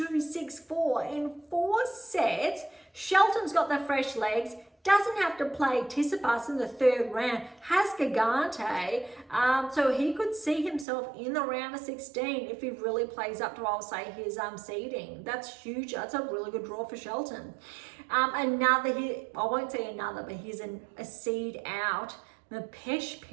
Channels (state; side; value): drops out; left; at 10.9 s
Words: 6-4 in 4 sets. Shelton's got the fresh legs, doesn't have to play Tsitsipas in the 3rd round, has Gigante, so he could see himself in the round of 16 if he really plays up to, I'll say, his seeding. That's huge. That's a really good draw for Shelton. I won't say another, but here's a seed out. The Pesh